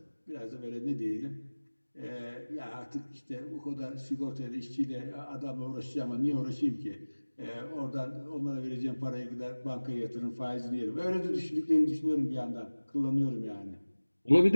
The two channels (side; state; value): both; inverted; correlation -1.00